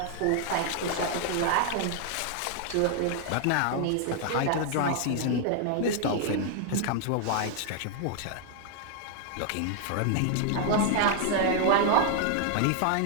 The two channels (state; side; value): different; both; correlation 0.00